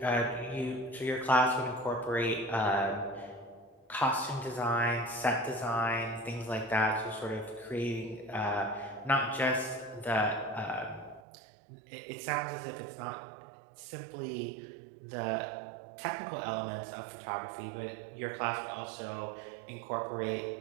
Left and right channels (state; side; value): drops out; left; at 11.2 s